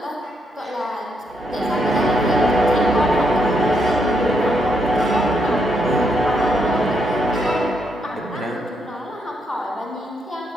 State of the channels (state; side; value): normal; both; correlation 0.77